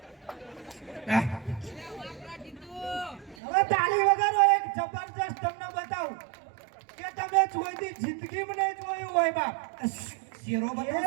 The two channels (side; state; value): left; drops out; at 3.4 s